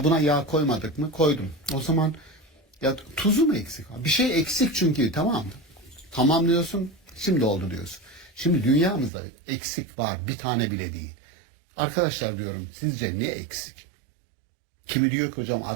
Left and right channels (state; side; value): drops out; left; at 9.1 s